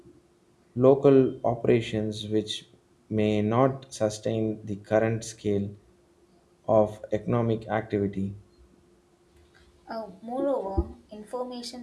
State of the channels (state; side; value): identical; both; correlation 1.00